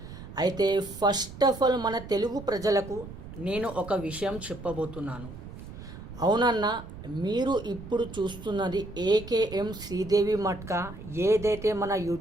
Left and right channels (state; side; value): noise; right; rumble, 13 dB below the sound